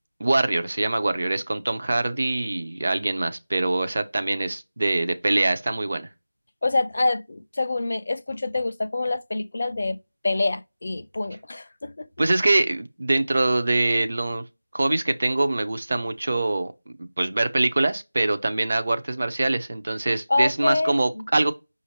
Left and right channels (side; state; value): both; inverted; correlation -0.96